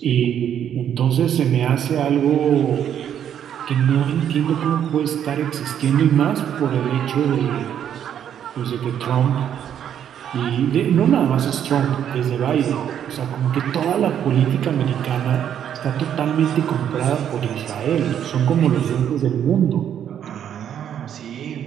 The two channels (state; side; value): quieter; left; 9.5 dB